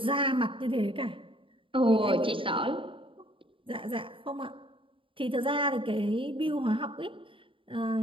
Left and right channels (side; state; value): left; late; 0.25 ms